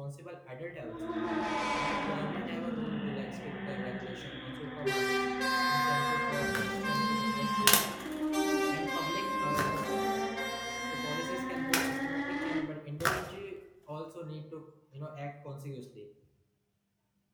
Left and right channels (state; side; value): identical; both; correlation 1.00